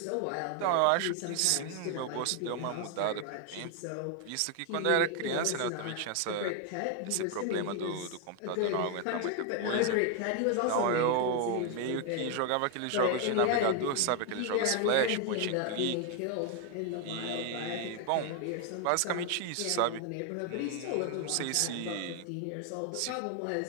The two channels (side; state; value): both; different; correlation 0.01